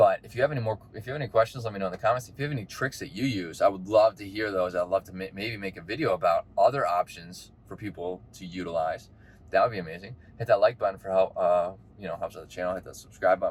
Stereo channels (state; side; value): identical; both; correlation 1.00